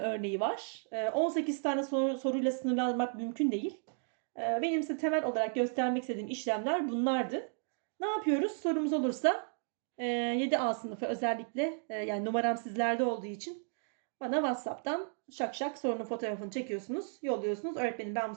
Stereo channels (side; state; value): left; silent; 55 dB below the other